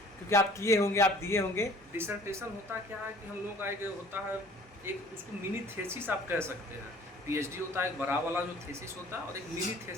क्योंकि आप किए होंगे, आप दिए होंगे। डिसर्टेशन होता क्या है कि हम लोग का एक होता है एक उसको मिनी थेसिस आप कह सकते हैं। पीएचडी होता है एक बड़ा वाला जो थेसिस होता है, और एक मिनी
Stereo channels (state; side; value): normal; both; correlation 0.51